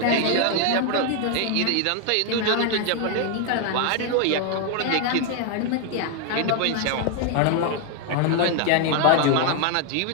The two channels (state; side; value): different; both; correlation 0.00